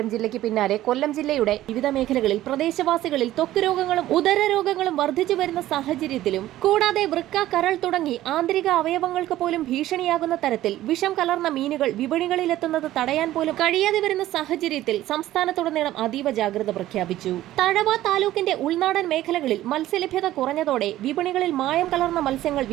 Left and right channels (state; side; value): quieter; left; 14.5 dB